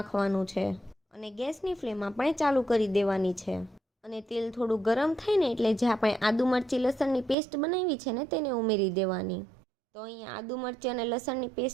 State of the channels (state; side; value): drops out; left; at 7.4 s